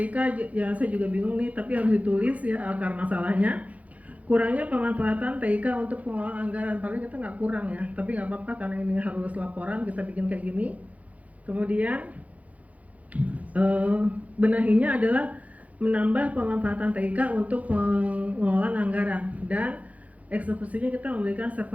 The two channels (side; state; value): left; late; 0.069 ms